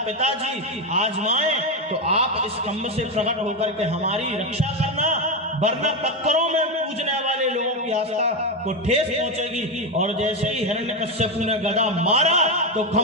पिताजी आजमाए तो आप इस खंभ से प्रकट होकर के हमारी रक्षा करना, वरना पत्थरों में पूजने वाले लोगों की आस्था को ठेस पहुंचेगी। और जैसे ही हिरण्यकश्यपु ने गदा मारा तो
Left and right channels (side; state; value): both; normal; correlation 0.11